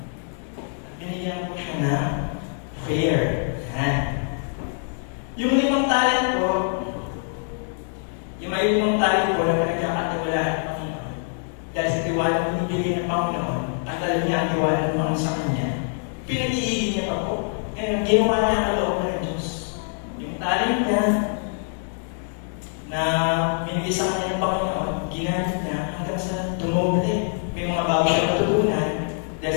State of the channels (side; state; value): right; silent; 62 dB below the other